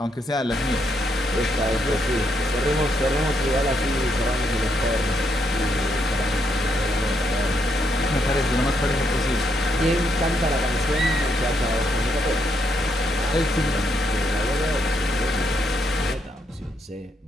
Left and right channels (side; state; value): both; normal; correlation 0.77